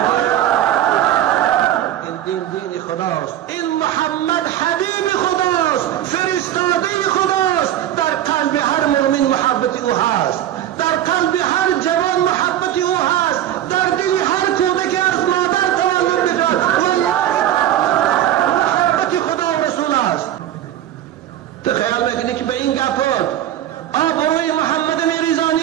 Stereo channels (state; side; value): quieter; left; 11.9 dB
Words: این دین خداست. این محمد حبیب خداست، فرستاده خداست. در قلب هر مؤمن محبت او هست، در قلب هر جوان محبت او هست، در دل هر کودک از مادر تولد می‌کند. محبت خدا و رسول است. تو خیال میکنی که به این گپات آبروی محمد